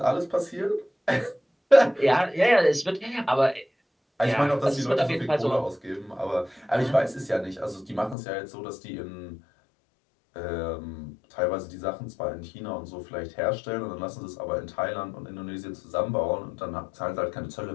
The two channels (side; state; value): right; drops out; at 8.2 s